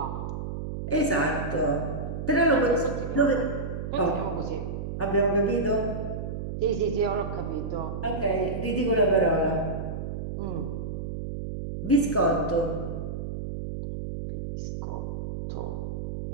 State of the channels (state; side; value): noise; right; hum, 5 dB below the sound